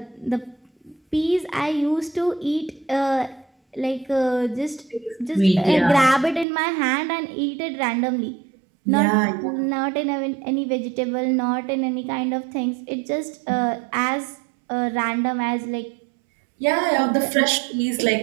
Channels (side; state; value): left; drops out; at 6.5 s